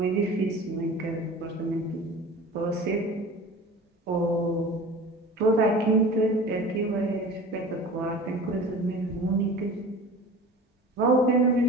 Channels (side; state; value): both; normal; correlation 0.38